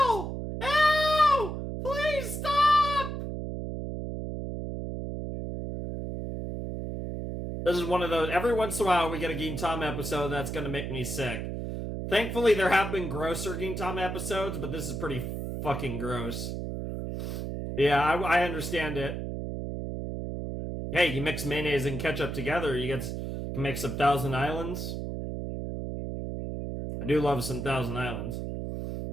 Ew! Please stop! This is one of those, every once in a while we get a Gintama episode that's gonna make me sick. Thankfully, there have been grosser Gintama episodes, but this is pretty fucking gross. Yeah, I understand it. Hey, you mix mayonnaise and ketchup together, you can make some Thousand Islands. I do love some Thousand Islands.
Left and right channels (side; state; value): right; noise; hum, 5 dB below the sound